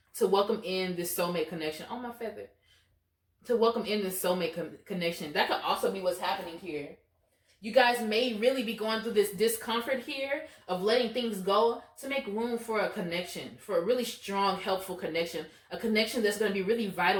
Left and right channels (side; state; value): both; identical; correlation 1.00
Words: to welcome in this soulmate connection. Oh, my feather. To welcome in this soulmate connection. That could also be what's happening here. You guys may really be going through this discomfort here of letting things go to make room for a connection, for a really strong, helpful connection. A connection that's going to be really